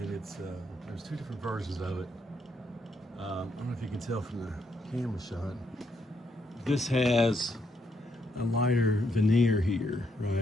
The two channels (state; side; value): normal; both; correlation 0.76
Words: it's, there's two different versions of it. I don't know if you can tell from the camera shot. This has a lighter veneer here,